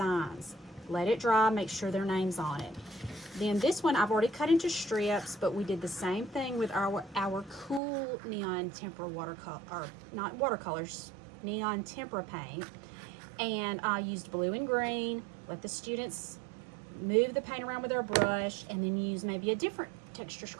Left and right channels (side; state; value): left; drops out; at 7.8 s